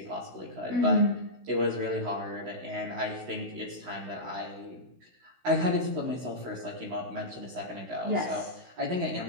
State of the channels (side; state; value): left; late; 16 ms